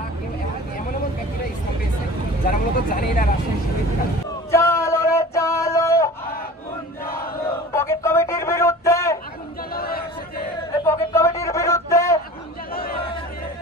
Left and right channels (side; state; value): both; normal; correlation 0.40